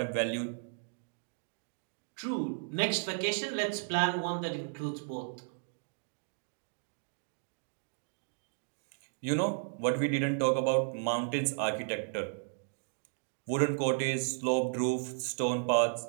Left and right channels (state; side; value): silent; left; digital silence